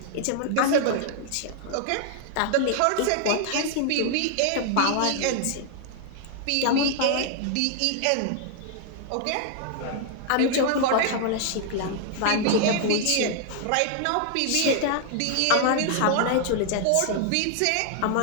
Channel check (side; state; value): both; different; correlation 0.00